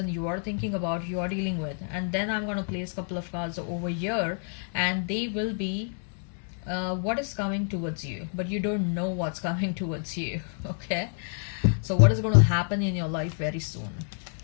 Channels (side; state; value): right; silent; 59 dB below the other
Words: you are thinking about, you are dealing with. And then I'm going to place a couple of cards over here and they will be what is coming towards you, but you don't know what's coming towards you. Okay, so what is going to happen in your life very soon.